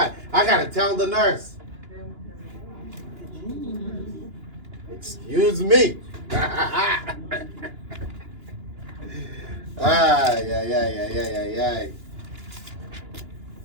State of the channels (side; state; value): left; late; 2.9 ms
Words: I gotta tell the nurse. Excuse me. Ay.